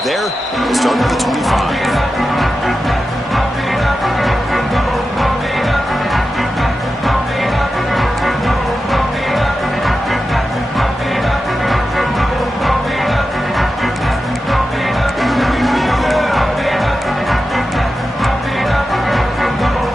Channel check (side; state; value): both; normal; correlation 0.91